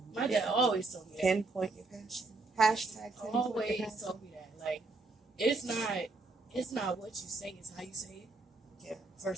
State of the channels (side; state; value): left; quieter; 3.5 dB